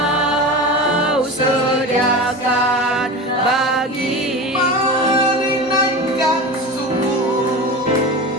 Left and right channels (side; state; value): both; normal; correlation 0.28